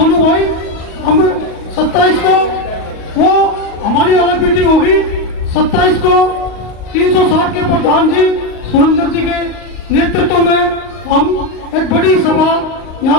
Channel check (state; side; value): late; right; 38 ms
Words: भाई, हम 27 को वो हमारी अलग मीटिंग होगी। 27 को 360 के प्रधान जी सुरेंद्र जी के नेतृत्व में हम एक बड़ी सभा